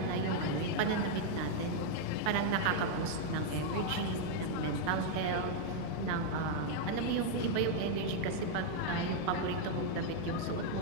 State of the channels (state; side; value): different; both; correlation 0.00